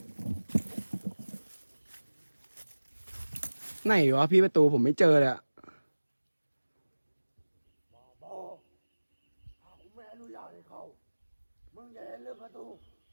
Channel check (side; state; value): both; inverted; correlation -1.00